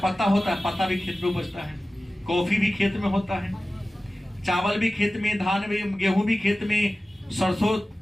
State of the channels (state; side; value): normal; both; correlation 0.96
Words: होता है, पत्ता भी खेत में उपजता है। कॉफी भी खेत में होता है, चावल भी खेत में, धान भी, गेहूं भी खेत में, सरसों,